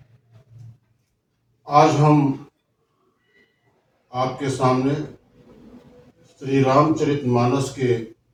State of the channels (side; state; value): both; identical; correlation 1.00